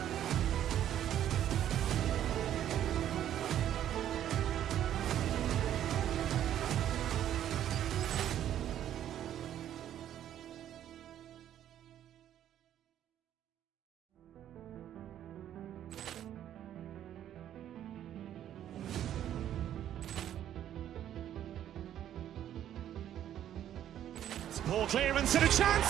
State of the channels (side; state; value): left; quieter; 11.0 dB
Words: Ball clearance and a chance